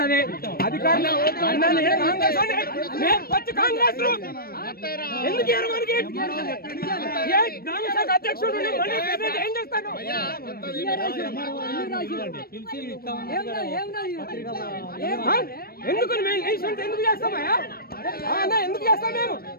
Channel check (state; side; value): late; right; 0.44 ms